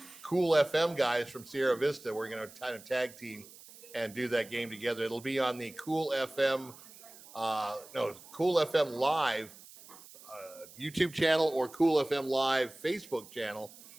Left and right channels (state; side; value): noise; right; hiss, 20 dB below the sound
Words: Cool FM guys from Sierra Vista. We're going to kind of tag team and do that game together. It'll be on the Cool FM Live YouTube channel or Cool FM Live Facebook channel.